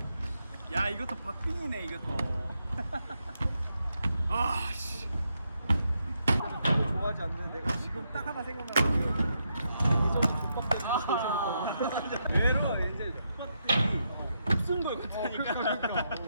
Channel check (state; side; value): inverted; both; correlation -0.81